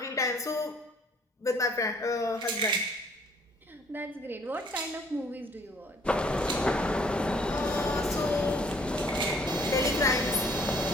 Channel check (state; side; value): normal; both; correlation 0.60